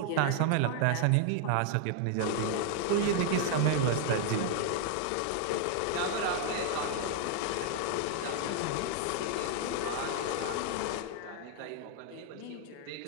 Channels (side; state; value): both; different; correlation 0.00